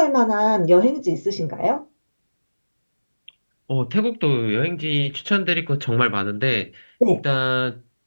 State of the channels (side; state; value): both; inverted; correlation -1.00